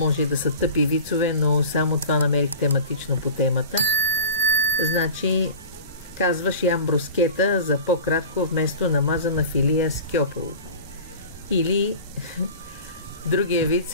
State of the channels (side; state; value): both; inverted; correlation -0.37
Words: да са тъпи вицове, но само това намерих тематично по темата. Значи, казваш ям брускета за по-кратко вместо намазана филия с кьополо. Или другия виц